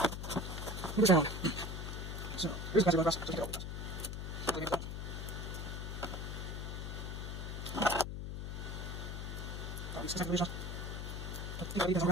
Move this around. So, here's the guys who go across. Just get all the guys. These second regions. You guys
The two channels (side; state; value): left; noise; hum, 5 dB below the sound